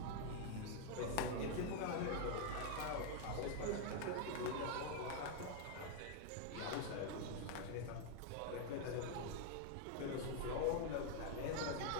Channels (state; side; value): different; both; correlation 0.00